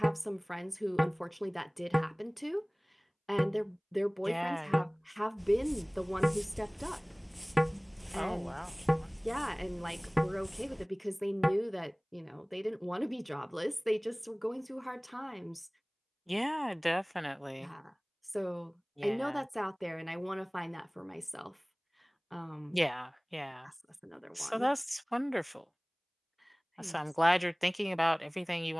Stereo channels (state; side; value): identical; both; correlation 1.00